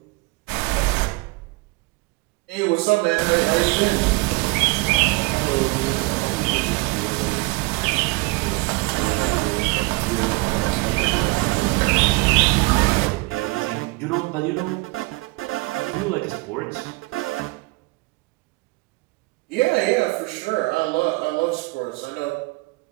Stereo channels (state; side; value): quieter; left; 25.2 dB